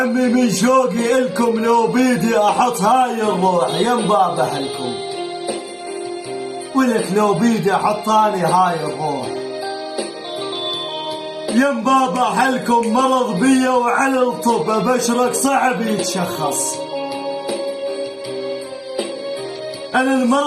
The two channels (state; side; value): identical; both; correlation 1.00